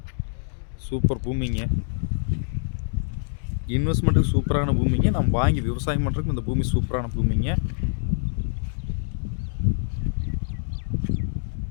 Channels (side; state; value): right; silent; digital silence